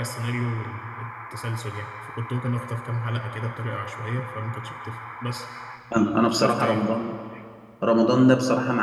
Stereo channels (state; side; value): identical; both; correlation 1.00